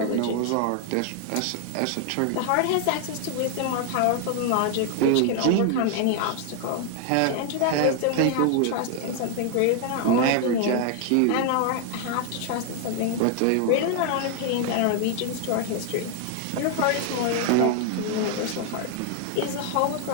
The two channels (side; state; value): both; different; correlation 0.00